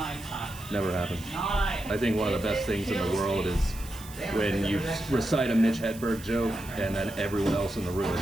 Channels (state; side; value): noise; right; hiss, 17 dB below the sound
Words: Never happened. I think one of the best things in the world is when you recite a Mitch Hedberg joke and then everyone else in the room